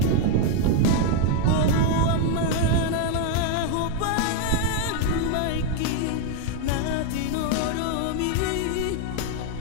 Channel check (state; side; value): different; both; correlation 0.01